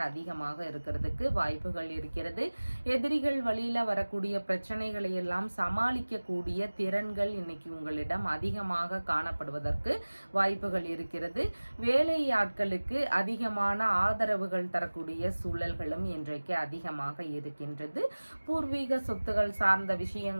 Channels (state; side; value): inverted; both; correlation -1.00